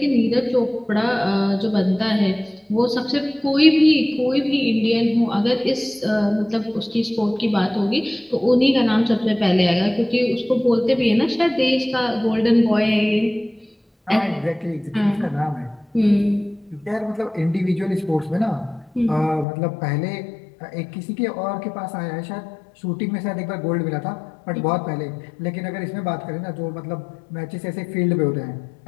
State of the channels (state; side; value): drops out; right; at 19.5 s